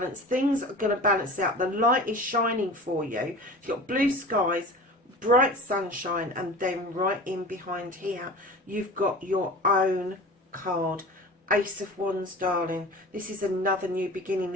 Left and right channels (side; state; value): both; normal; correlation 0.37